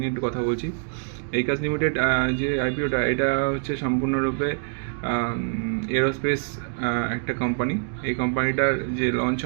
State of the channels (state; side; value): silent; left; digital silence